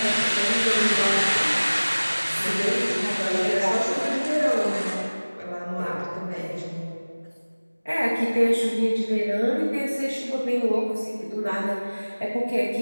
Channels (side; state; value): both; inverted; correlation -1.00